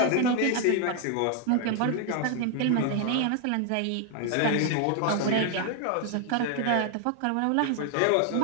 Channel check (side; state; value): both; different; correlation 0.00